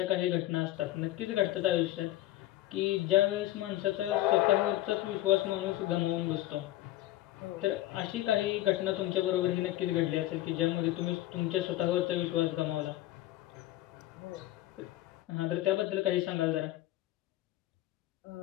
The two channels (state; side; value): quieter; right; 15.4 dB